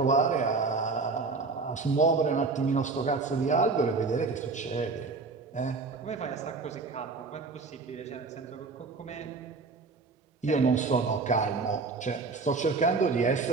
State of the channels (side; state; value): left; quieter; 4.1 dB